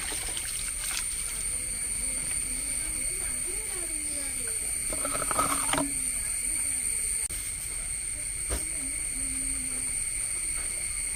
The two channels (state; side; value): identical; both; correlation 1.00